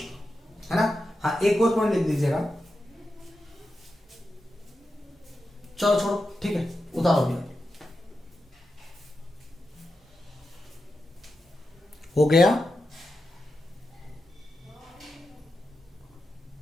है ना। हाँ, एक और पॉइंट लिख दीजिएगा, चलो छोड़ो, ठीक है, उतारो भैया, हो गया।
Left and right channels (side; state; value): both; normal; correlation 0.89